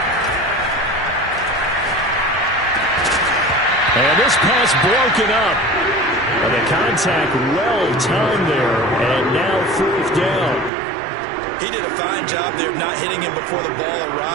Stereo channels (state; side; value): drops out; left; at 10.7 s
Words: And this pass broken up. And the contact well-timed there, and now 4th down. He did a fine job there of not hitting him before the ball